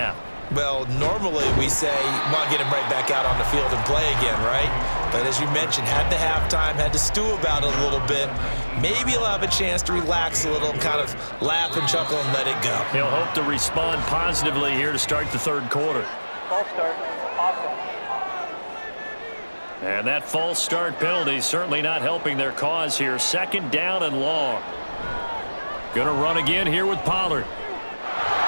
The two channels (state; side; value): inverted; both; correlation -1.00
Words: Well, normally we say, want to get him right back out on the field and play again, right? But as you mentioned, had the halftime, had to stew about it a little bit. Maybe he'll have a chance to relax a little and kind of laugh and chuckle and let it go. He'll hope to respond positively here to start the third quarter. False start. Awesome. And that false start penalty certainly not helping their cause here. 2nd down and long. Gonna run again here with Pollard.